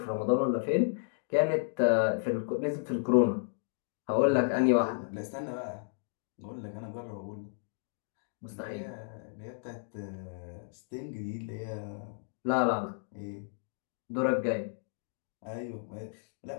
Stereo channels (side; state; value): right; silent; digital silence